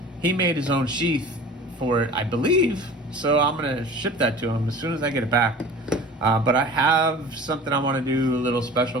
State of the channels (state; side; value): normal; both; correlation 0.41